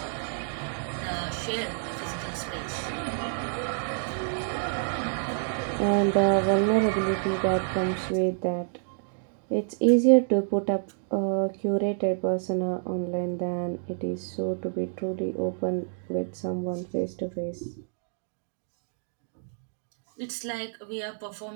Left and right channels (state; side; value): silent; left; digital silence